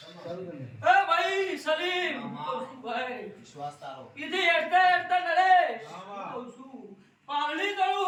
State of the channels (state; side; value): identical; both; correlation 1.00